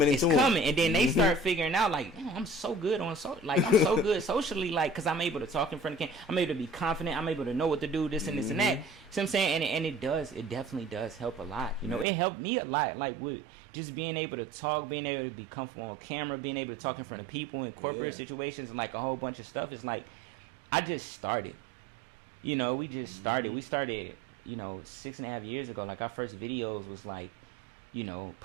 into them. It's coming, and then they start figuring out like, I'm so good I'm so good socially, like, because I'm able to talk in front of the camera. I'm able to be confident. I'm able to know what to do, this and this and that. See what I'm saying? And it definitely does help a lot. You know, it helped me a lot, like with just being able to talk, being able to be comfortable on camera, being able to talk in front of people in corporate situations, and like a whole bunch of stuff. It's like I just started. You know, we just started. We started, 6.5 years ago. Like our first videos was like,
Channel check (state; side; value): drops out; left; at 12.1 s